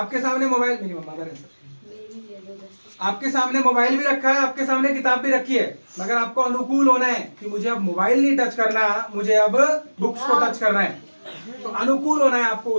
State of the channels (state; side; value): inverted; both; correlation -1.00